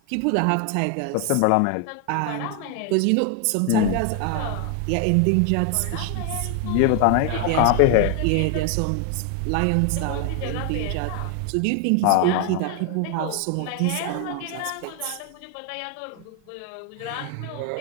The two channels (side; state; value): both; different; correlation 0.00